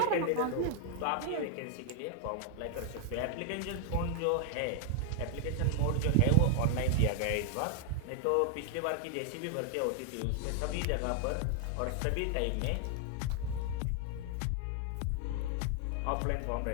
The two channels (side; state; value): both; different; correlation 0.00